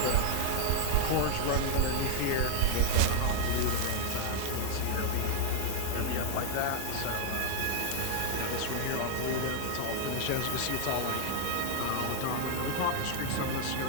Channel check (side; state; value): both; different; correlation 0.00